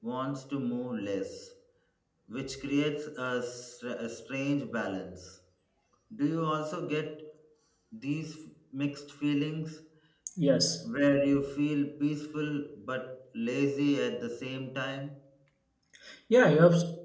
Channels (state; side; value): identical; both; correlation 1.00